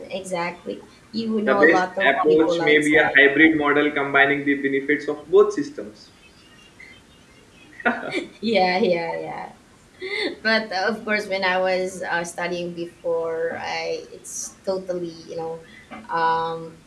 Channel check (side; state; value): both; identical; correlation 1.00